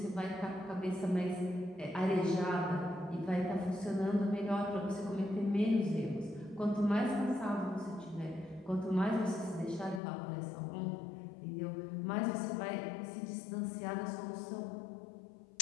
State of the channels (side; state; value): right; drops out; at 10.0 s